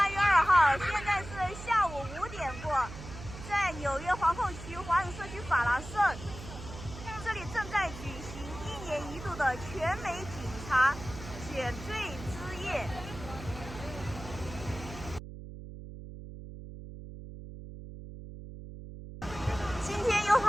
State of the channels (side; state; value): right; noise; hum, 12 dB below the sound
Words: 月2号，现在是下午5点过，在纽约皇后区华人社区法拉盛，这里正在举行1年1度的全美警察选罪之夜。今天有